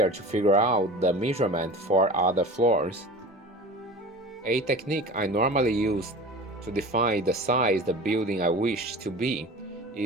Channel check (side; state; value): both; normal; correlation 0.36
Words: to figure out the measurement for other floors. A technique I normally use to define the size the building I wish to be